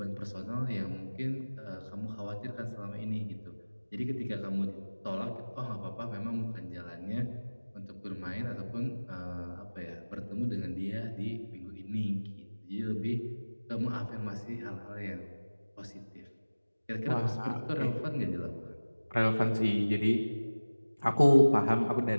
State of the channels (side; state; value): both; inverted; correlation -1.00